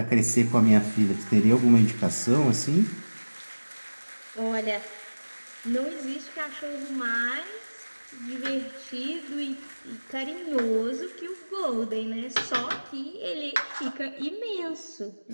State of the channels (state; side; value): inverted; both; correlation -1.00